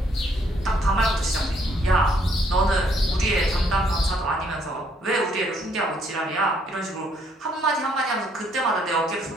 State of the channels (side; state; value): both; normal; correlation 0.68